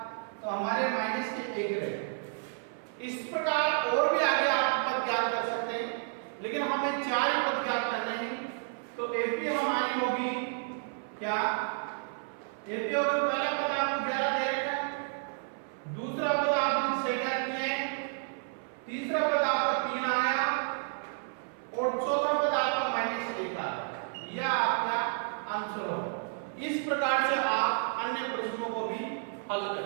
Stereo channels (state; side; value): silent; left; 57 dB below the other